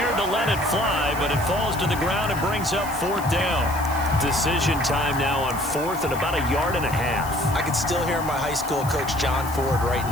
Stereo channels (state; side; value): noise; left; hiss, 14 dB below the sound